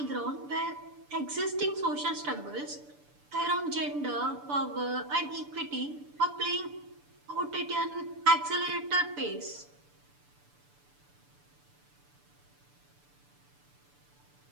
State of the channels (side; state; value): left; late; 6.9 ms